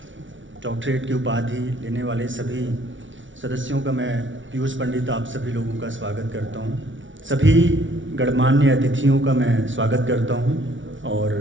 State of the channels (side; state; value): left; late; 0.56 ms